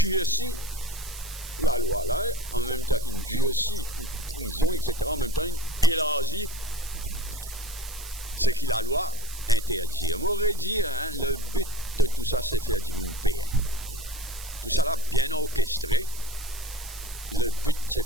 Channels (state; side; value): noise; right; hiss, 13 dB below the sound